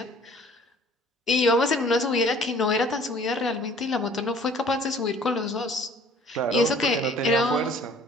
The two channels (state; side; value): normal; both; correlation 0.52